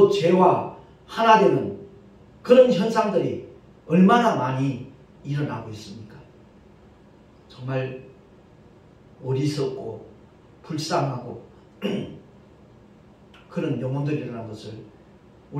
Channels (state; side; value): identical; both; correlation 1.00